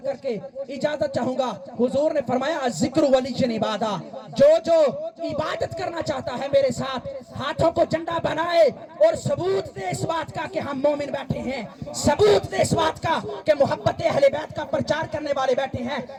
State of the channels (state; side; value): identical; both; correlation 1.00